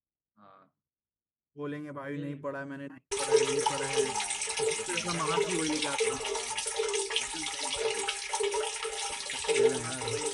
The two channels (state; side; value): identical; both; correlation 1.00